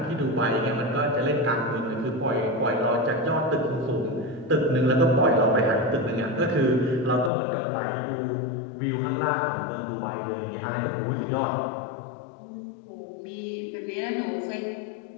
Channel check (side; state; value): right; drops out; at 7.3 s